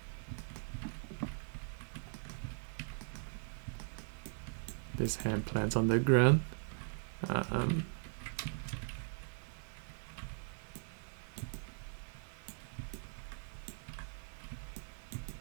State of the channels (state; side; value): silent; left; 51 dB below the other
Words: This hand plants on the ground.